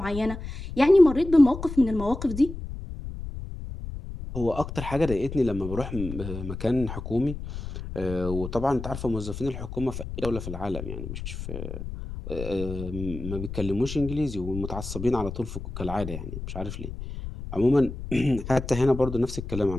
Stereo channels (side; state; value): left; noise; rumble, 8 dB below the sound